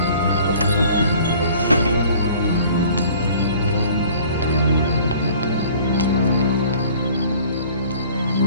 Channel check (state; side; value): inverted; both; correlation -0.50